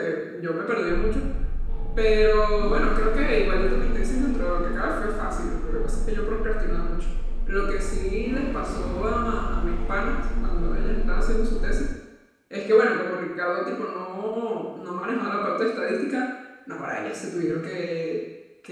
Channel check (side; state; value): both; identical; correlation 1.00